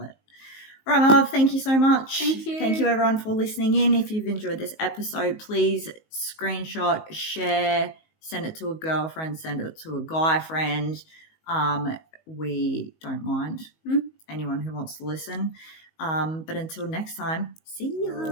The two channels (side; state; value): right; late; 19 ms